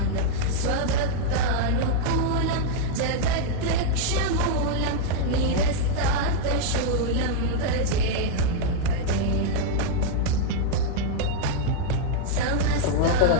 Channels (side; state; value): both; different; correlation -0.01